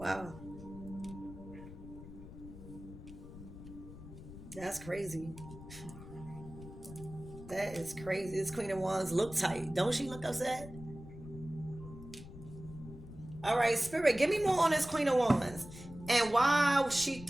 That's crazy. That is crazy. This Queen of Wands look tight. Don't she look upset? All right, Spirit, give me more on this Queen of Wands. And why is she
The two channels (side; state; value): left; noise; rumble, 14 dB below the sound